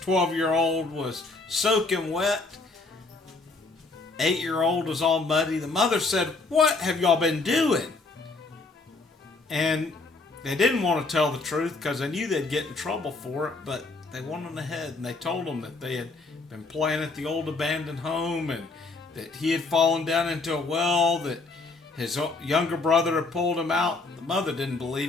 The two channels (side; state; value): right; quieter; 3.6 dB